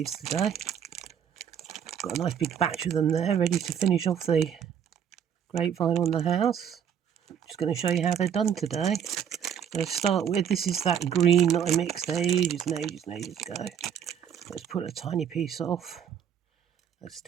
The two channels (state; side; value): quieter; left; 8.5 dB